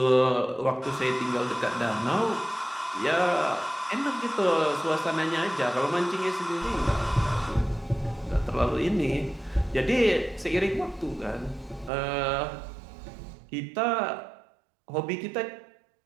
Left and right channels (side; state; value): left; drops out; at 11.9 s